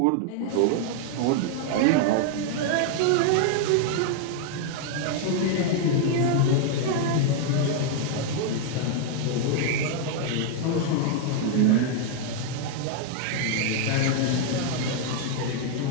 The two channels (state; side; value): different; both; correlation 0.00